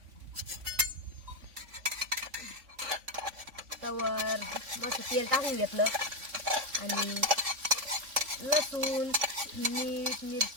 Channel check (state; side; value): late; left; 3.5 ms